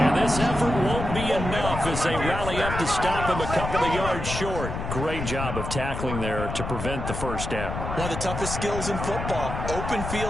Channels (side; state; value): left; noise; rumble, 5 dB below the sound